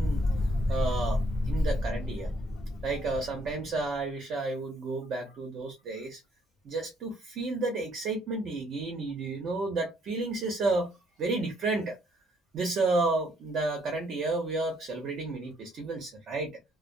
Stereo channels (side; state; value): both; normal; correlation 0.68